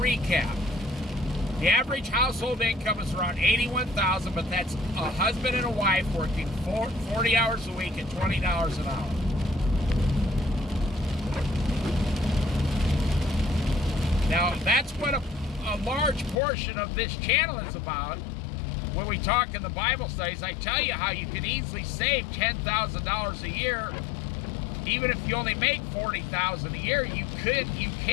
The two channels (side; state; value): right; drops out; at 16.4 s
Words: The average household income is around $81,000, but that's a husband and a wife working 40 hours a week at $20 an hour. Now, that's what a large portion of this channel is about. When we talk in the Bible studies, I tell you how you can easily save $10,000 a year. Even if you only make $40,000 a year, you can